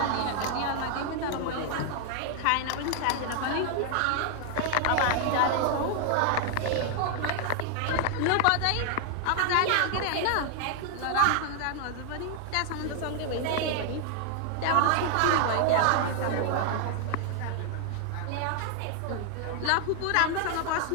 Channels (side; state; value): both; different; correlation 0.00